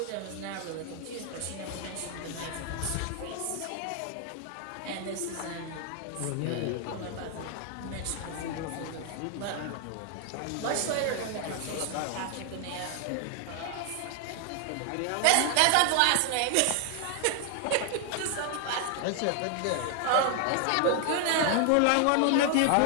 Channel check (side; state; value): both; different; correlation 0.00